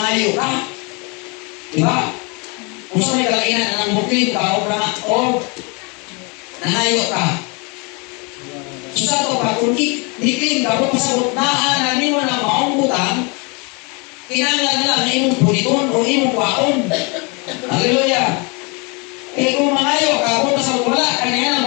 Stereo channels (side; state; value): right; quieter; 30.9 dB